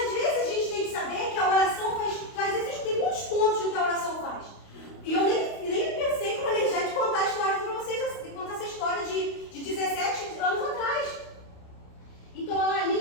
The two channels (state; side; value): late; right; 29 ms